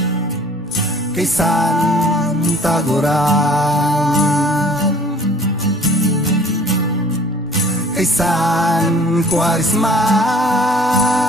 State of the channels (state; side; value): normal; both; correlation 0.52